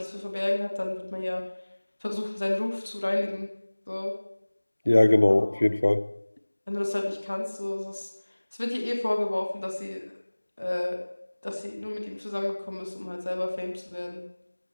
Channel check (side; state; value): both; inverted; correlation -1.00